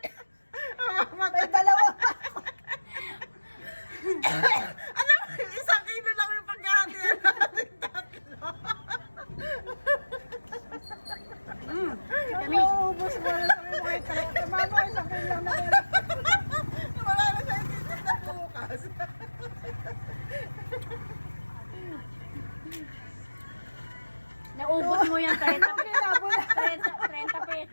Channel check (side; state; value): both; inverted; correlation -1.00